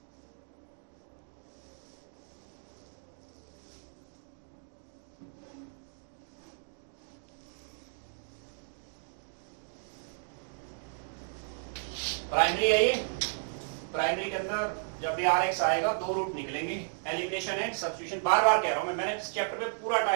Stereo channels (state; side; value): silent; left; digital silence